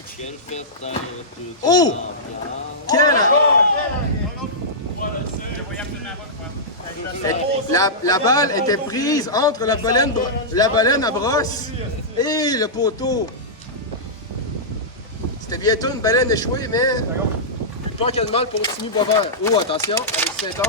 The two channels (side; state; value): both; normal; correlation -0.14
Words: Quelle fête dans toute Oh! l'ambiance? La balle était prise entre la baleine à brosse et le poteau. C'était bientôt une baleine échouée, mais pas qu'il y a de mal pour Timmy Boisvert. Oh, attention, Alexis